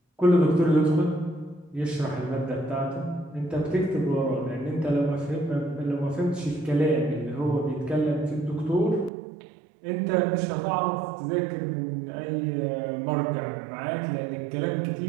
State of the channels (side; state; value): left; drops out; at 9.1 s